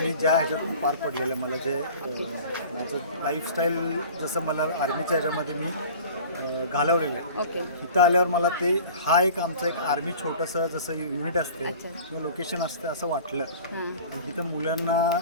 ज्या ह्याच्यातून पार पडलेलं, मला जे माझं लाईफस्टाईल जसं मला आर्मीच्या ह्याच्यामध्ये मी घालवलेलं आहे, ओके. इथं आल्यावर मला ते हा एक आमचं एक आर्मी छोटंसं जसं युनिट असते किंवा लोकेशन असते असं वाटलं. इथं मुलांना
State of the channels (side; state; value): both; inverted; correlation -0.43